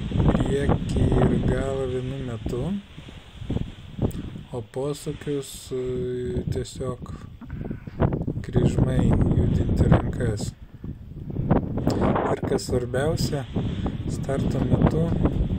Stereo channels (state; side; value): identical; both; correlation 1.00